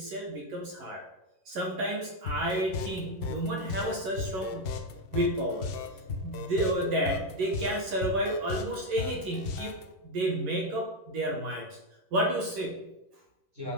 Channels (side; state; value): left; late; 11 ms